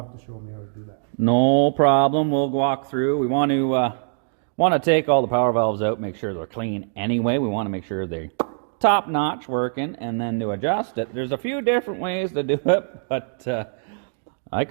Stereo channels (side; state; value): left; silent; digital silence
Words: to show me how to do that. No problem. We'll walk through. We want to take all the power valves out, make sure they're clean anyway. We want to make sure they're top notch working, and then to adjust it. There's a few different ways to do it, but I